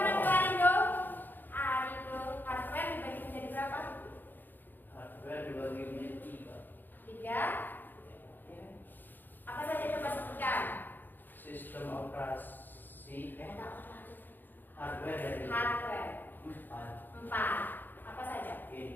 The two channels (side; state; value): right; late; 0.091 ms